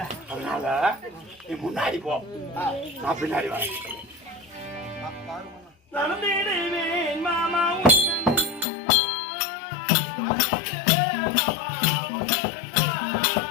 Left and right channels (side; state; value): right; drops out; at 8.7 s